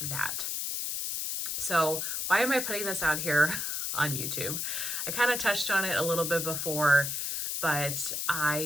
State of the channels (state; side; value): noise; left; hiss, 1 dB below the sound